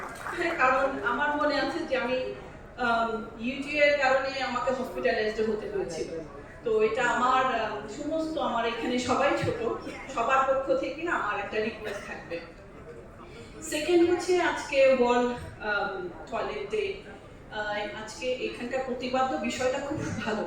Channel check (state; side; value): identical; both; correlation 1.00